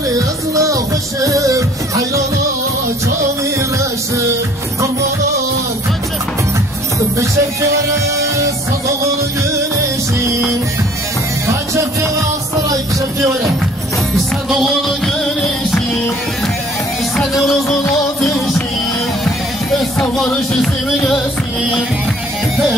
esnafışım Hayrana çamireşim Kurbana kaçıp bir şevkere sadağını güneşim Kaçıp saray şevkere sen doğunu güneşim sen eurozun ateşim sen varış ismi gelsin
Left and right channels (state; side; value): noise; left; rumble, 27 dB below the sound